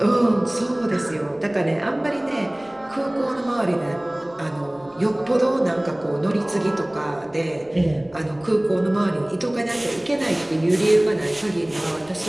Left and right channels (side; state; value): left; noise; rumble, 28 dB below the sound